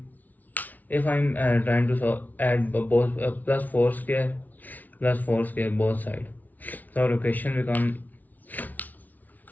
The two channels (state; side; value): late; right; 0.078 ms